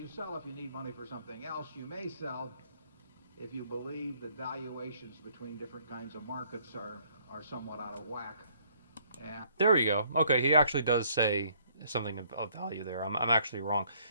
sell if you need money for something else. You may sell if you believe that valuations between different kinds of markets are somewhat out of whack. And there you go. Okay, he actually does say something of value there. I'm actually wrong,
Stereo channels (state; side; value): inverted; both; correlation -0.64